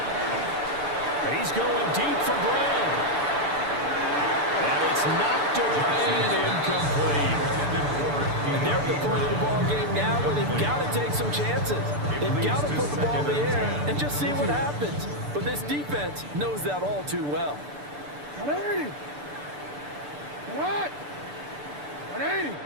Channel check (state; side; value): late; left; 6.8 ms